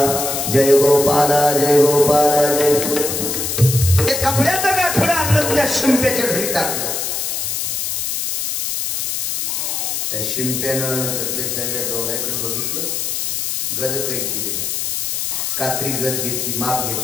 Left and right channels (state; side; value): noise; left; hiss, 1 dB below the sound